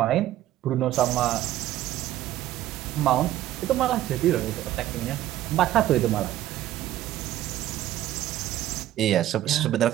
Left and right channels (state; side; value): quieter; left; 13.6 dB